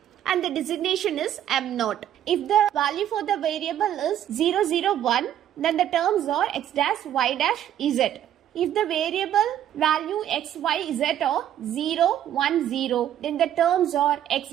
And the designation is m0. If the value for the variable is 0, 0, 1, then the terms are x dash, y dash, z. If the variable value x, y, z are 0, 1, 0, then the terms are x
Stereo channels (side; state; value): left; quieter; 11.0 dB